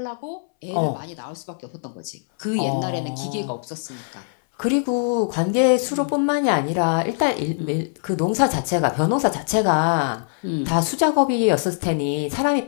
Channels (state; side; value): silent; right; 64 dB below the other